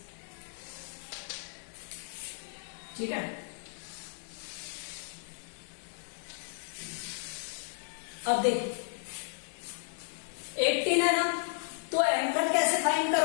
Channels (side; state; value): right; silent; digital silence